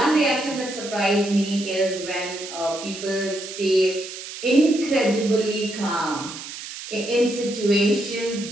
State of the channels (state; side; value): noise; right; hiss, 11 dB below the sound